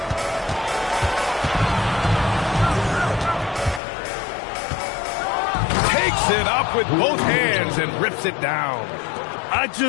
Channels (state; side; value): drops out; right; at 3.8 s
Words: Takes it up with both hands and rips it down. I